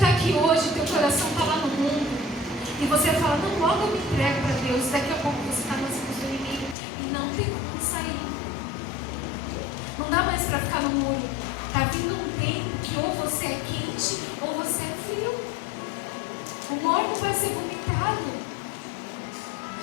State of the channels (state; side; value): drops out; right; at 6.8 s